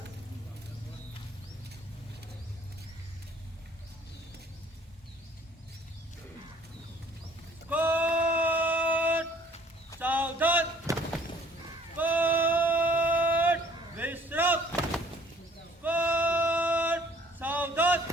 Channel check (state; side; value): normal; both; correlation 0.57